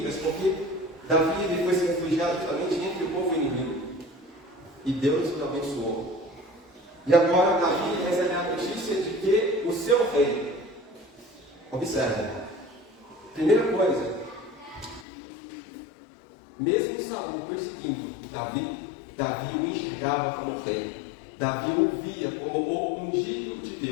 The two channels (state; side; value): drops out; right; at 15.1 s